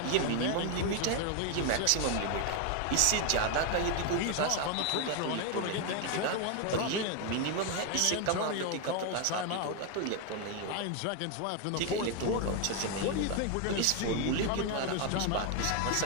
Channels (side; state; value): both; different; correlation 0.01